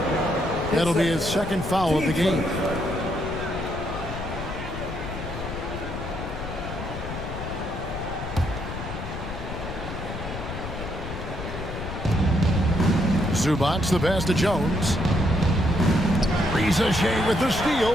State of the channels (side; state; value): left; noise; rumble, 8 dB below the sound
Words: That'll be his second foul of the game. Zubac the pass to Jones. Reza Shea with the steal.